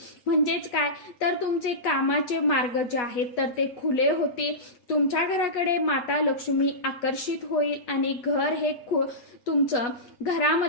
म्हणजेच काय तर तुमचे कामाचे मार्ग जे आहेत तर ते खुले होतील. तुमच्या घराकडे माता लक्ष्मी आकर्षित होईल आणि घर हे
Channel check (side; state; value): right; late; 8.2 ms